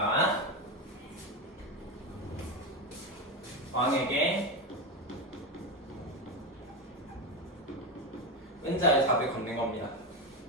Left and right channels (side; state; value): both; normal; correlation 0.14